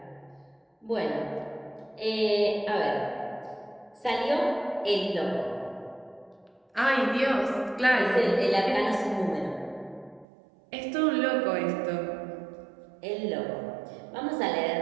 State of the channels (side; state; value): left; drops out; at 10.2 s